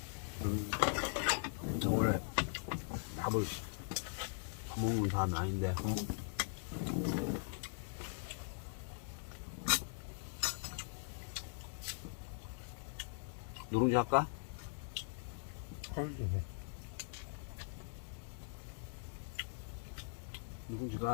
원래 밥을 더 먹는 사람이 아닌데. 누룽지 할까? 헐,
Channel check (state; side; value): silent; right; digital silence